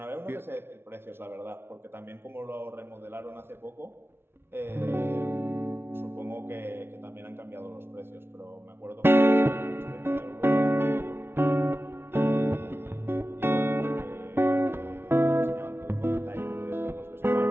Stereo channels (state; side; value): late; left; 0.11 ms